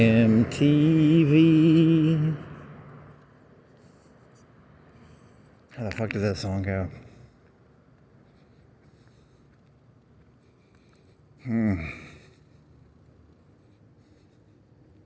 How the fuck does that song go? You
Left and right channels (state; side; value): identical; both; correlation 1.00